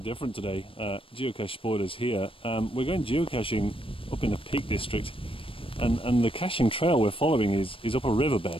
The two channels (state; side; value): late; right; 0.26 ms